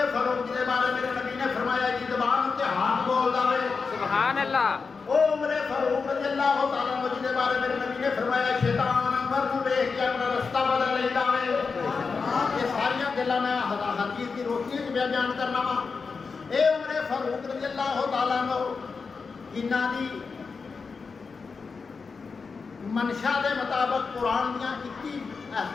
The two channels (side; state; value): right; quieter; 4.9 dB